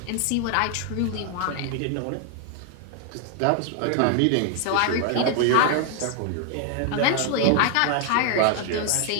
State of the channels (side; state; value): both; different; correlation 0.00